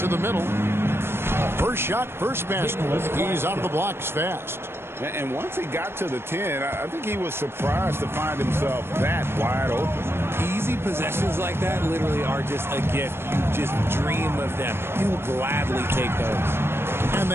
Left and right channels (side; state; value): left; late; 0.12 ms